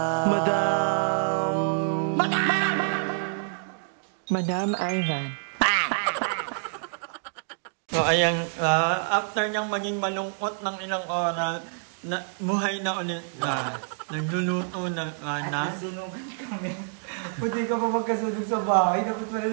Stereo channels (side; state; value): left; silent; digital silence